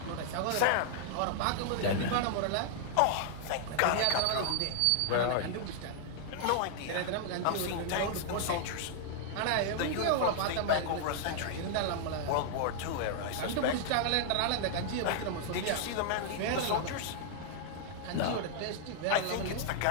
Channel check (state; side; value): different; both; correlation -0.01